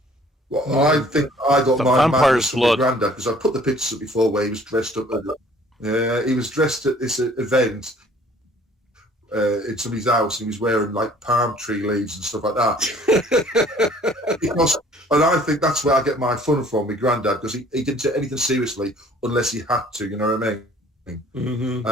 Well, I think I got my madness from my granddad, because I put the pictures up before where he was dressed up. He was dressed at this event in somebody's house, and he was wearing like palm tree leaves and stuff like that. And I think that's where I get my fun from, my granddad, because he didn't take anything seriously unless he had to, you know what I mean? Mm-hmm.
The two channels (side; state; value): both; normal; correlation 0.55